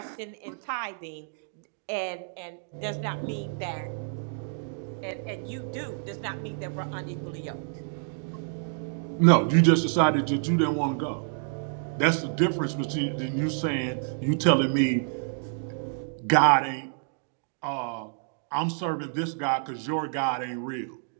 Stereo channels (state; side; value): silent; left; digital silence